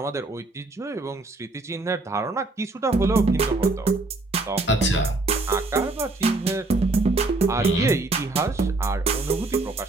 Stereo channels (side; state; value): left; quieter; 3.0 dB